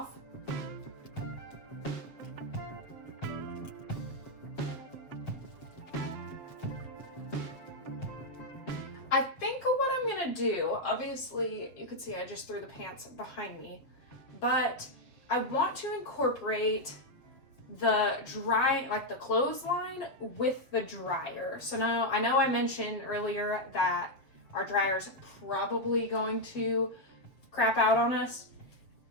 I think what I'm gonna do, obviously you could see I just threw the pants behind me, but I want to incorporate the the clothesline with the dryer. So now I know I mentioned earlier that our dryer's probably going to crap out on us.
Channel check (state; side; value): late; right; 7.4 ms